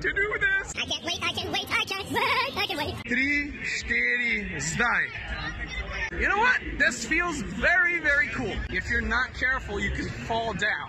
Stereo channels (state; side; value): identical; both; correlation 1.00